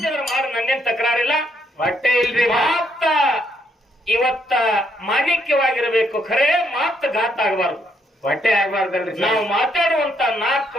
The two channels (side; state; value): both; normal; correlation 0.74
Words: ನಂದೇನ್ ತಕರಾರಿಲ್ಲ. ಹೊಟ್ಟೆ ಇಲ್ರಿ. ಮಾತ ಇವತ್ತ ಮಾಣಿಕ್ಯವಾಗಿರಬೇಕು, ಖರೇ ಮಾತು ಘಾತ ಆಗಬಾರ್ದು. ಹೊಟ್ಟೆ ಆಗ್ಬಾರ್ದಲ್ರಿ ನಾವು ಮಾತಾಡುವಂತ 4